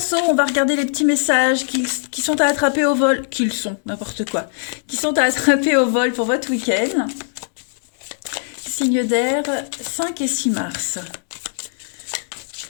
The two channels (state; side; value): silent; right; digital silence